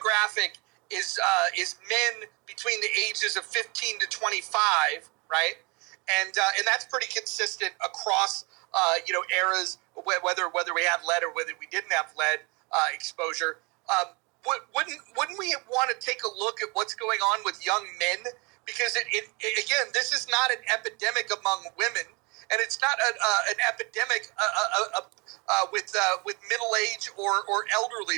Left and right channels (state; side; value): quieter; left; 29.0 dB